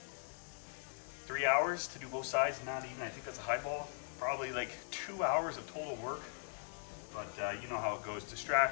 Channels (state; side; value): silent; right; digital silence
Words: 3 hours to do both sides, not even, I think that's a highball. Probably like 2 hours of total work. But you know how it goes,